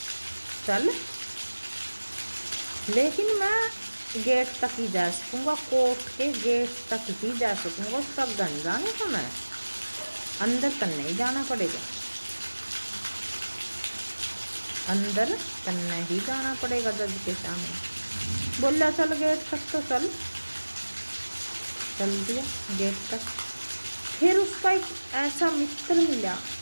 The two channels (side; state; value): both; inverted; correlation -1.00